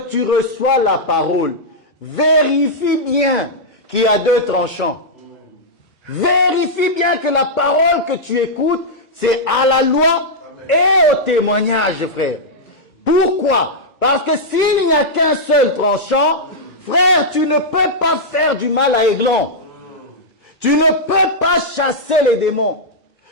tu reçois la parole, vérifie bien qu'il y a 2 tranchants. Vérifie bien que la parole que tu écoutes, c'est à la loi et au témoignage, frère. Pourquoi? Parce que s'il n'y a qu'un seul tranchant, frère, tu ne peux pas faire du mal à Eglon. Tu ne peux pas chasser les démons.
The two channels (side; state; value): both; normal; correlation -0.07